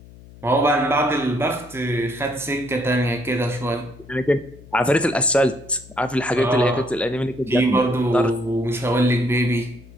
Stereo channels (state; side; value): noise; left; hum, 21 dB below the sound